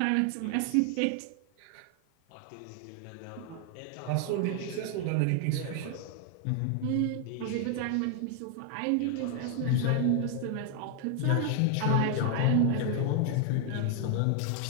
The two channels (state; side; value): different; both; correlation 0.00